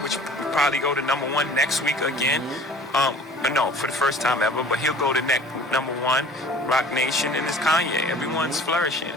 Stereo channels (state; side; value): normal; both; correlation 0.47